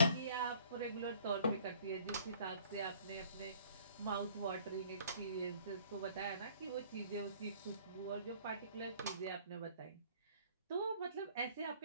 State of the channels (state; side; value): inverted; both; correlation -0.56